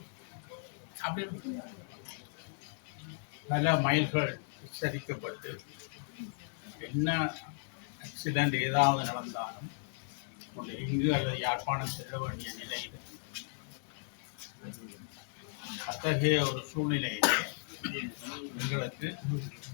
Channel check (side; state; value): right; silent; 54 dB below the other